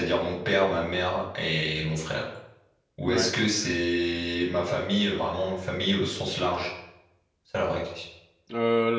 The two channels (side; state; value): both; identical; correlation 1.00